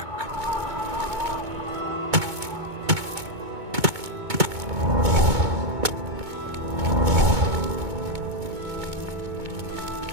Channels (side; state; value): left; late; 2.2 ms